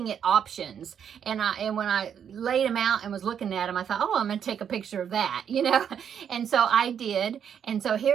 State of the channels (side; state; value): left; quieter; 8.2 dB